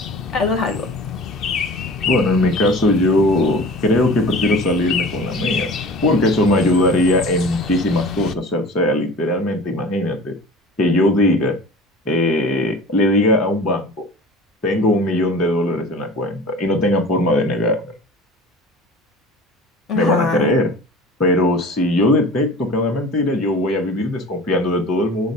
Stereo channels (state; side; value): normal; both; correlation 0.40